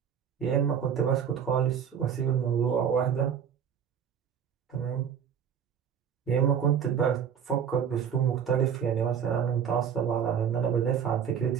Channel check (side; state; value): left; quieter; 8.0 dB